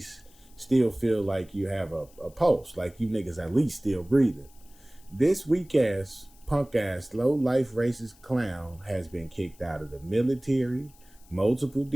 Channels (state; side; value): noise; left; hiss, 27 dB below the sound